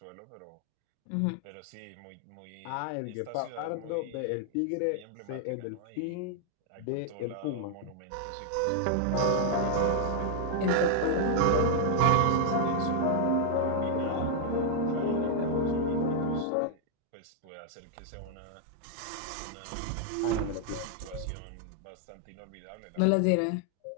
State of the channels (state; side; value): different; both; correlation 0.00